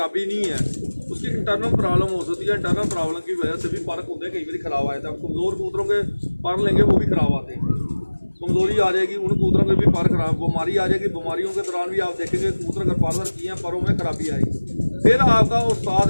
नहीं है, उसकी इंटरनल प्रॉब्लम हो सकती है। इंटरनल प्रॉब्लम की वजह से भी पर खुदे कई बार ख़राब आए थे। अब कमज़ोर कबूतरों के पर लेंगे वो भी ख़राब आते हैं, कमज़ोरी आ जाएगी, उन कबूतरों के भी पर खराब, बीमारी आ जाएगी। बीमारियों के दौरान भी आप देखेंगे कबूतर अगर पार्लर किए हैं, परों में खराबी आएगी। फिर आपका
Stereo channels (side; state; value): both; inverted; correlation -1.00